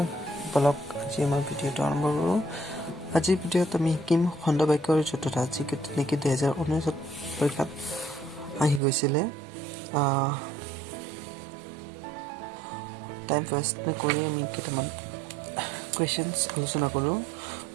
বলক আজি আমাৰ ভিডিঅ'টো আৰম্ভ কৰোঁ। আজিৰ ভিডিঅ'ত আমি শিকিম খণ্ড বাক্যৰ জতুটা, যি নেকি 2019 পৰীক্ষাত আহি গৈছিলে। টাইম ৱেষ্ট নকৰি আমি কেইটামান কুৱেশ্যনছ আলোচনা কৰোঁ।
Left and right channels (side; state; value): left; drops out; at 8.8 s